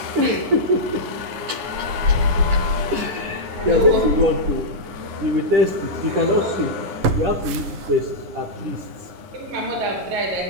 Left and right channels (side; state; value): left; late; 10 ms